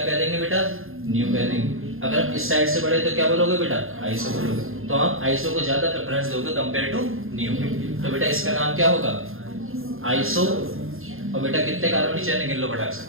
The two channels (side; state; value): left; late; 0.60 ms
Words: देंगे बेटा? न्यू कह देंगे। अगर हम इस साइड से बढ़े तो क्या बोलोगे बेटा? आईएसओ बोलोगे। तो हम आईएसओ को ज्यादा प्रेफरेंस दोगे कंपेयर टू न्यू। तो बेटा इसका नाम क्या होगा? आईएसओ। और बेटा कितने कार्बन की चेन गिन लो फटाक से,